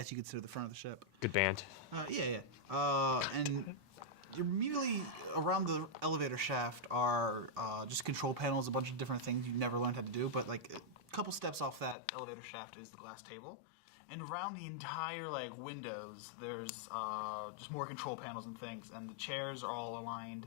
you could consider the front of the ship. Good band. Yeah. And immediately around the elevator shaft are just control panels, a bunch of different things you never learned how to do. But like a couple steps off that elevator shaft is the glass table, and around the entire like windows, there's just more control panels and things. And the chairs are all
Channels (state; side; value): drops out; right; at 12.0 s